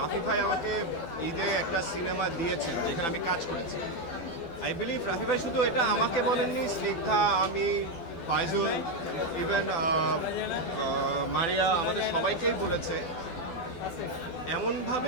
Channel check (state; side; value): late; right; 12 ms